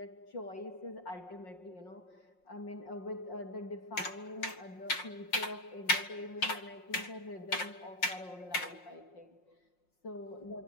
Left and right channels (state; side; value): late; right; 5.6 ms